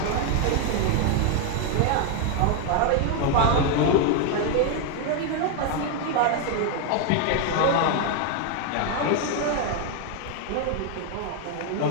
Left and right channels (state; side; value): different; both; correlation 0.01